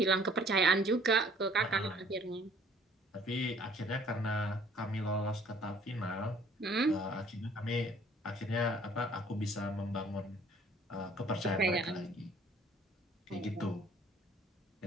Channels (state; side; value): normal; both; correlation 0.57